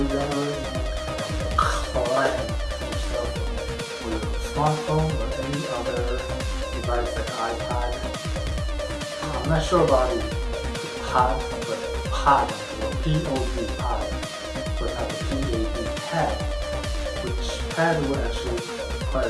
collect yourself with a smartphone or any other device like iPad. I'm not sure about the pod, but pod, or P-O-D, pod, but not the P-A-D, pad, which pad will actually require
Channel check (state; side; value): identical; both; correlation 1.00